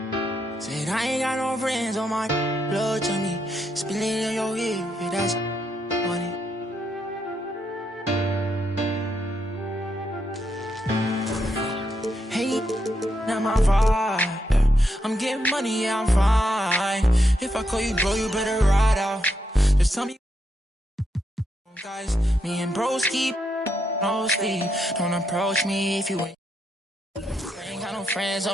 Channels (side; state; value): both; normal; correlation 0.80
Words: Said I ain't got no friends on my blood to me. Spilling in your ear, that's funny. Hey, not my vibe. I'm getting money, yeah, I'm fine. If I call you bro, you better ride out. Just tell me, guys, me and bros keep no sleep. Don't approach me if you ain't. Got no friends